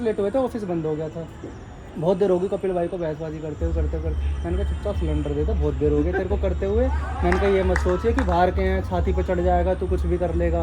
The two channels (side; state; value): both; identical; correlation 1.00